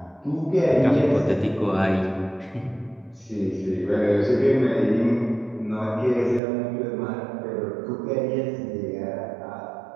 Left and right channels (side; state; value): left; drops out; at 6.4 s